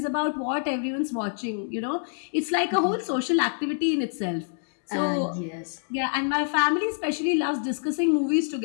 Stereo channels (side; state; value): right; silent; digital silence